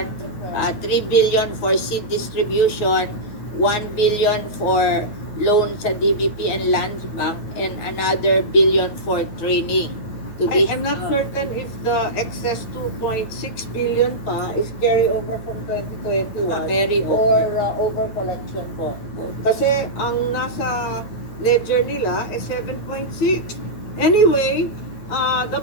3 billion for seed distribution, 1 billion for loan sa DBP and Land Bank, and another billion for training. I'm not certain if the excess 2.6 billion pa is carry over from 2021 Carry over. or over collection po. Kasi ang nasa ledger nila is 7.6. Anyway, the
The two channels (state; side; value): late; right; 9.1 ms